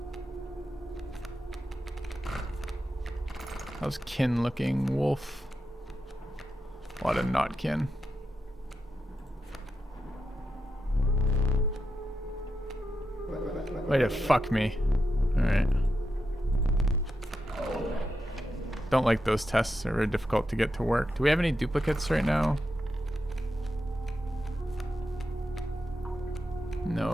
How's kin looking, wolf? A lot of not kin. Way to fuck me. Alright. Don't like those tests. They're very difficult to get to work. Do we have any duplicates right now?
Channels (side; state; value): both; normal; correlation 0.87